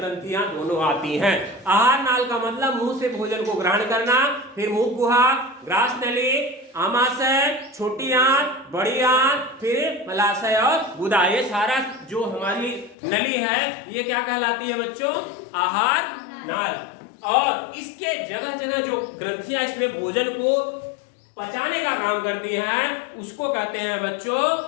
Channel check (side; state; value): right; drops out; at 13.0 s